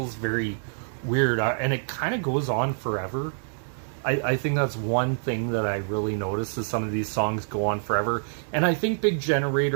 very weird, and it kind of goes on forever. I think that's one thing that I really noticed is some of these songs go on forever, and I think Big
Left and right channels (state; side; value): silent; left; digital silence